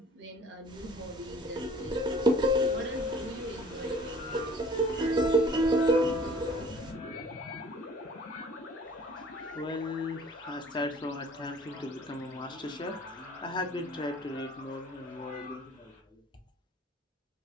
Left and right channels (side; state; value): both; normal; correlation 0.51